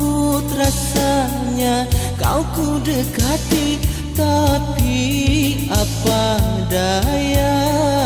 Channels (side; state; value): both; identical; correlation 1.00